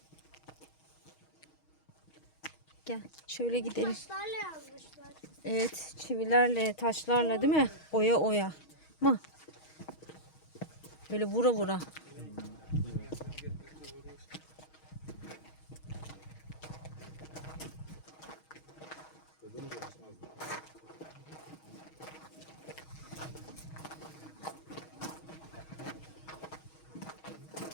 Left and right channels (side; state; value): right; late; 6.3 ms